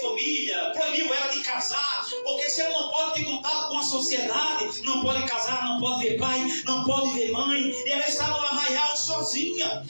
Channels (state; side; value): inverted; both; correlation -1.00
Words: proibiu ela de casar, porque se ela não pode ter contato com a sociedade, não pode casar, não pode ver pai, não pode ver mãe, e ela está no arraial sozinha,